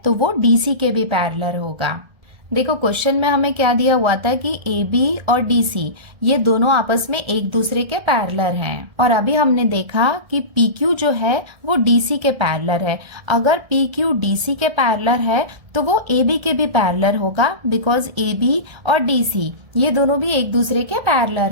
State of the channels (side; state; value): left; late; 1.3 ms